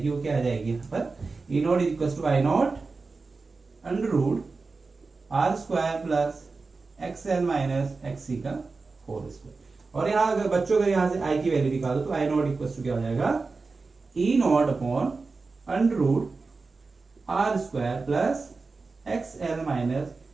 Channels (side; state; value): left; quieter; 4.1 dB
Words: वो क्या आ जाएगी यहाँ पर, E naught is equal to I naught under root R square plus XL minus XC का होल स्क्वायर। और यहाँ अगर बच्चों अगर यहाँ से आई की वैल्यू निकालो तो आई नॉट इक्वल टू क्या हो जाएगा, e naught upon under root R square plus XL minus